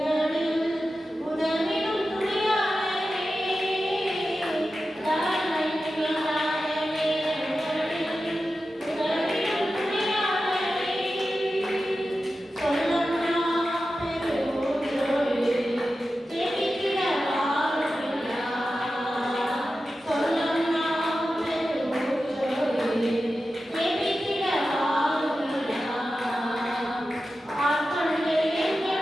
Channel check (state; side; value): normal; both; correlation 0.93